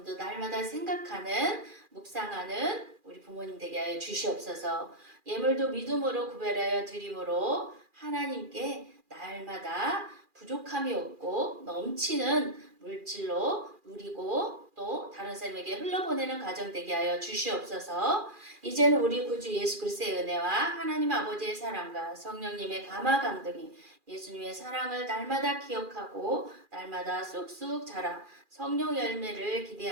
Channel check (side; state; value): left; late; 2.4 ms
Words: 날마다 생각하는 묵상하는 우리 부모님 되게 하여 주시옵소서. 예물도 믿음으로 구별하여 드림으로 하나님께 날마다 부족함이 없고 넘치는 물질로 누리고 또 다른 사람에게 흘러보내는 가정 되게 하여 주시옵소서. 이제는 우리 구주 예수 그리스도의 은혜와 하나님 아버지의 사랑과 성령님의 감화 강등이 예수님의 사랑을 날마다 기억하고 날마다 쑥쑥 자라 성령 열매를